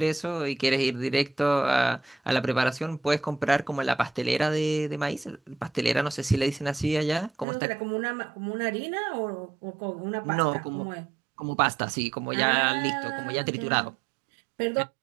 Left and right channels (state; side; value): drops out; left; at 7.5 s